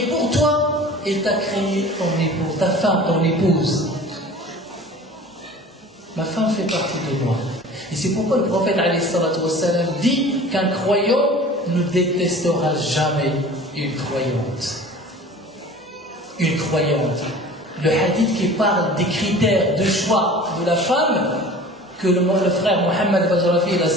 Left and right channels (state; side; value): normal; both; correlation 0.43